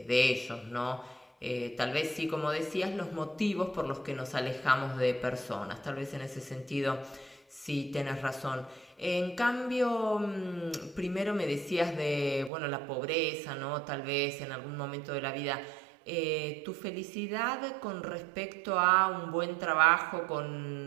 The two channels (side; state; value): left; drops out; at 12.5 s